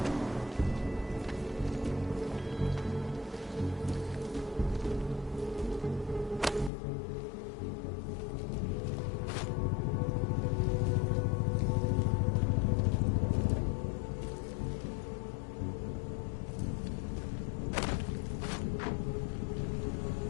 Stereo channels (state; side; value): drops out; right; at 6.7 s